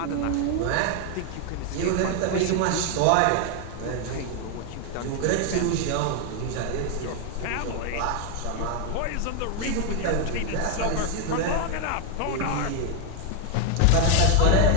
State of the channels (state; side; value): different; both; correlation 0.01